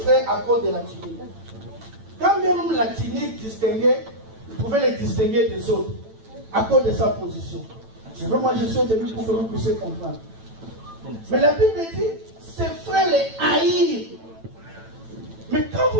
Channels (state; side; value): late; left; 9.0 ms